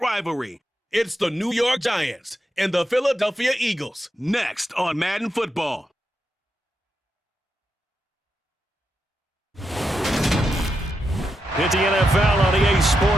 rivalry. It's the New York Giants and the Philadelphia Eagles, next on Madden Football. Hit the NFL on EA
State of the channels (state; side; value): normal; both; correlation 0.85